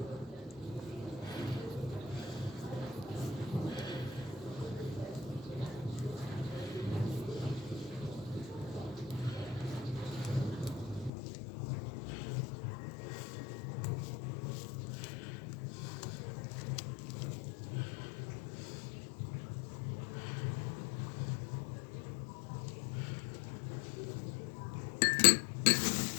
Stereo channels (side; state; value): right; drops out; at 11.1 s